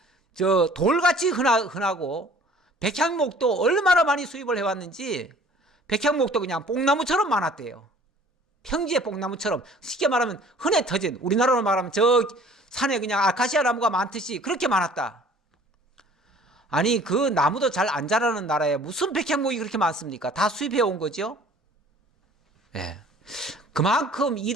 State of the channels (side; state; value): both; normal; correlation 0.51